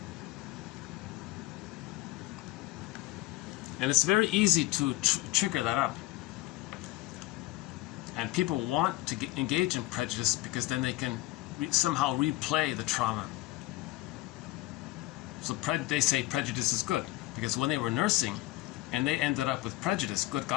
And it's very easy to trigger that up. And people want to engage in prejudice because then they can somehow replay the trauma. So they say prejudice is good, because when they were nursing and they ended up with prejudice, good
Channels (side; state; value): right; quieter; 18.3 dB